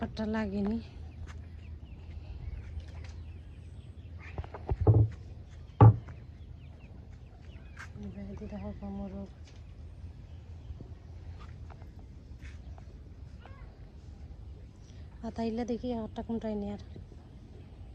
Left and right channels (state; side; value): identical; both; correlation 1.00